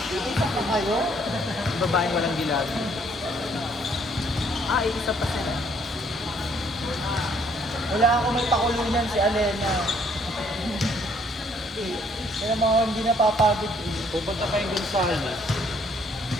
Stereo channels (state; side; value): normal; both; correlation 0.65